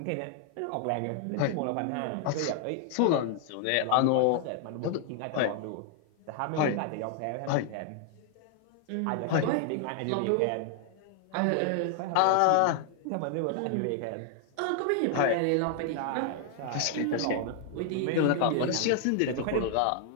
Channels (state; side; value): different; both; correlation 0.00